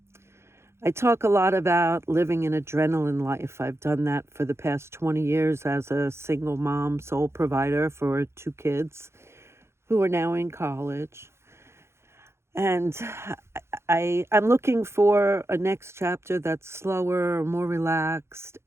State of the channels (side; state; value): left; late; 0.13 ms